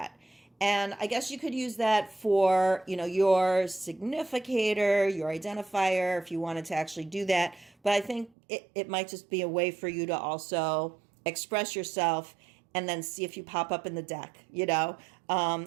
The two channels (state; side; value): drops out; left; at 8.3 s